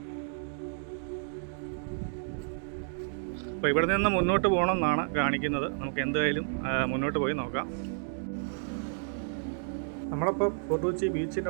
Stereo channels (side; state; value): left; silent; digital silence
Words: അപ്പോൾ ഇവിടെ നിന്ന് മുന്നോട്ട് പോകണമെന്നാണ് കാണിക്കുന്നത്. നമുക്ക് എന്തായാലും മുന്നോട്ട് പോയി നോക്കാം. നമ്മളിപ്പോൾ ഫോർട്ട് കൊച്ചി